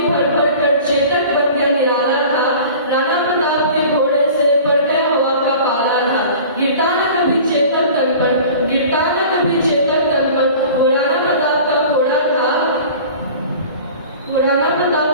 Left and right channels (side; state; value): both; inverted; correlation -0.42